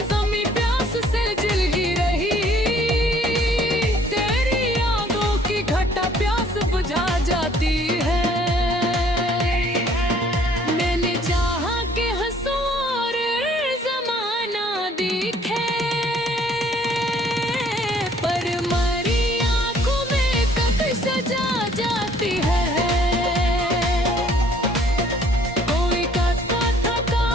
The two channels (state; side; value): normal; both; correlation 0.59